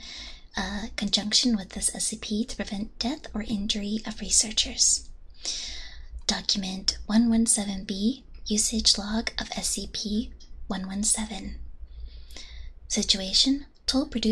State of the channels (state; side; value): identical; both; correlation 1.00